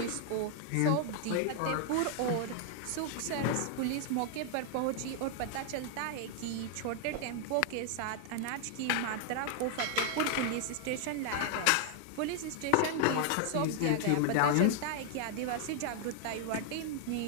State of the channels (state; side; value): different; both; correlation 0.00